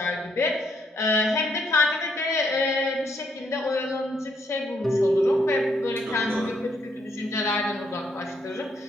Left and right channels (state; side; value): normal; both; correlation 0.73